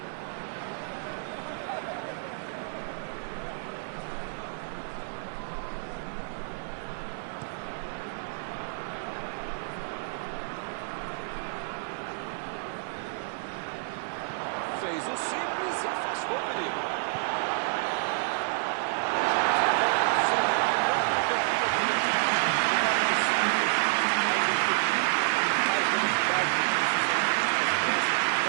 Fez o simples e afastou o perigo. Jogar mais simples, mais efetivo, mais velocidade, não necessariamente mais pressa.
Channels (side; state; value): left; silent; 59 dB below the other